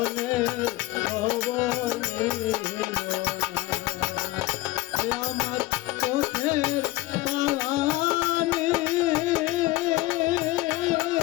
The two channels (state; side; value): quieter; right; 18.6 dB